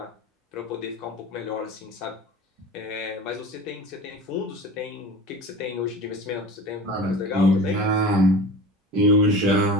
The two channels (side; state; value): both; normal; correlation 0.35